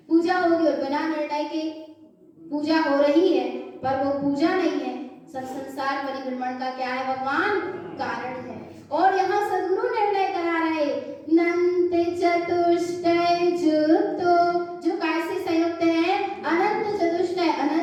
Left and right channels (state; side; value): identical; both; correlation 1.00